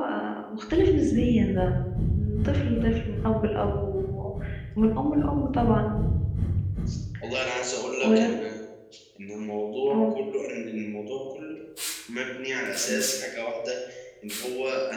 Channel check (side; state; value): both; identical; correlation 1.00